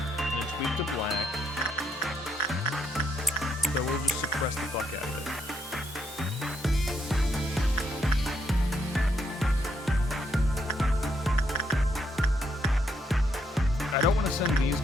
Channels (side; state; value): both; normal; correlation 0.76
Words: it's weak to black. So we'll just suppress the fuck out of it. I don't want to send these